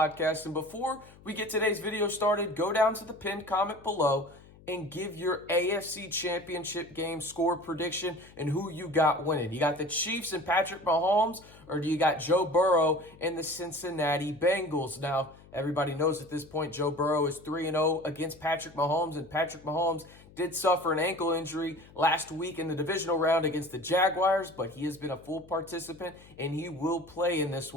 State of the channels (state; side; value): noise; left; hum, 23 dB below the sound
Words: And before we get today's video started, go down to the pinned comment below and give your AFC Championship game score prediction and who you got winning. You got the Chiefs and Patrick Mahomes, or do you got Joe Burrow and the Cincinnati Bengals? Now, everybody knows at this point Joe Burrow is 3-0 against Patrick Mahomes, and Patrick Mahomes did suffer an ankle injury last week in the divisional round against the Jaguars, but he has been a full participant and he will play in this